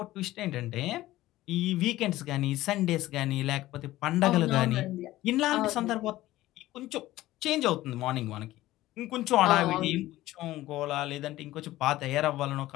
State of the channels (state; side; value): quieter; right; 16.2 dB